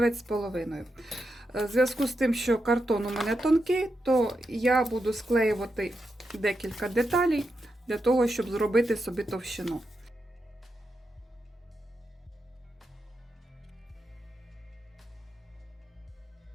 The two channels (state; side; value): normal; both; correlation 0.86